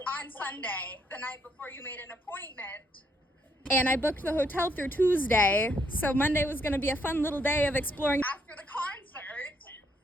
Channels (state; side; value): normal; both; correlation 0.72